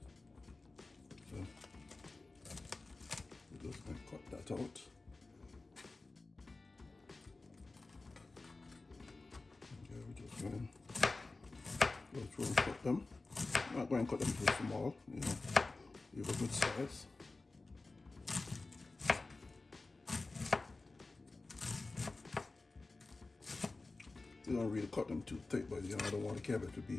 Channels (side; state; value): right; quieter; 3.4 dB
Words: So we're just gonna cut that out. Okay, we're just going to go through and cut them. I'm not going to cut them too small, leave a good size. You don't really cut them too thick, but I don't want the cabbage to